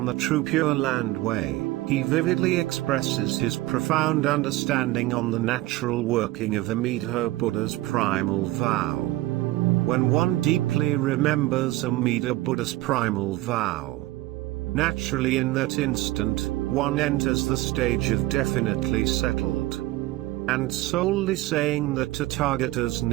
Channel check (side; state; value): left; quieter; 17.8 dB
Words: the True Pure Land Way, he vividly expresses his profound understanding on the natural working of Amida Buddha's primal vow. When one deeply remembers Amida Buddha's primal vow, naturally in that instant, one enters the stage of definitely settled, and solely saying the Tathagata's